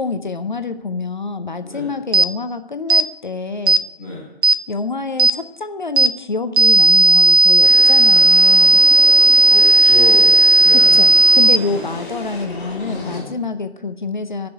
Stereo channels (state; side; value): normal; both; correlation 0.56